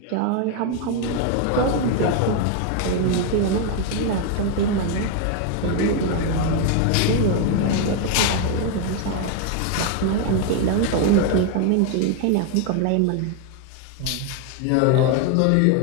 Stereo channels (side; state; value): both; different; correlation 0.01